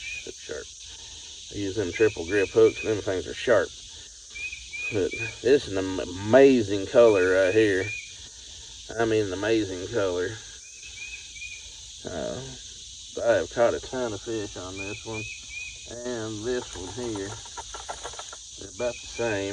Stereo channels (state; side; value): identical; both; correlation 1.00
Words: that's sharp. I use them triple grip hooks and them things are sharp. But this is an amazing color right here. I mean, an amazing color. I have caught a ton of fish on this one, and this one here. They're about the